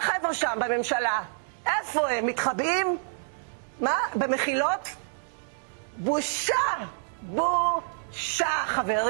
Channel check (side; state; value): left; silent; digital silence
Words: שם בממשלה, איפה הם? מתחבאים? מה? במחילות? בושה! בושה,